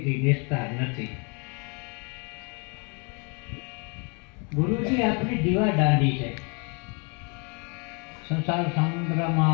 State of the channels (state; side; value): quieter; right; 34.6 dB